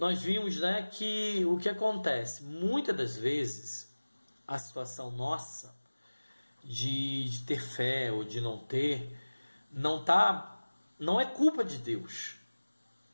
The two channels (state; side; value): inverted; both; correlation -1.00